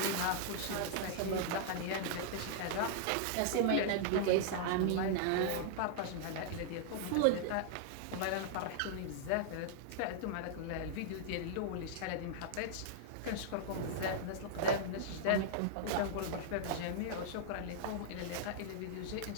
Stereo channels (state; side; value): different; both; correlation -0.02